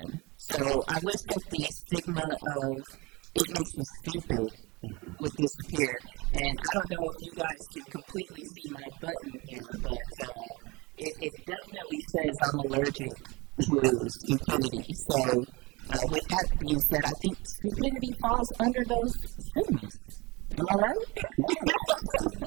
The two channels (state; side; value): quieter; left; 25.0 dB